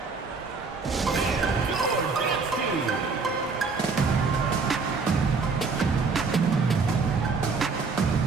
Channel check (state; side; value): quieter; left; 4.6 dB